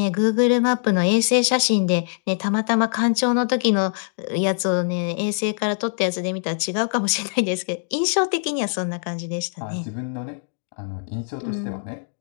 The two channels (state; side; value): silent; right; digital silence